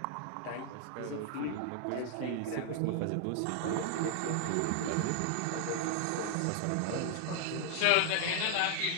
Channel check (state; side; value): different; both; correlation 0.00